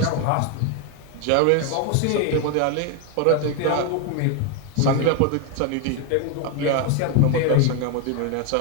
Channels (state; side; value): different; both; correlation 0.01